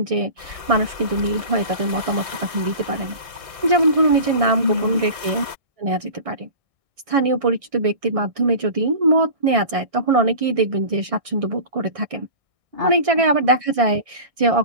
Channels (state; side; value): late; left; 1.6 ms